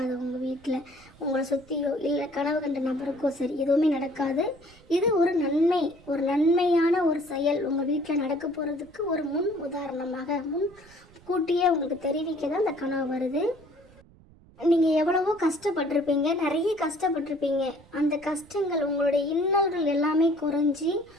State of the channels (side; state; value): right; noise; rumble, 26 dB below the sound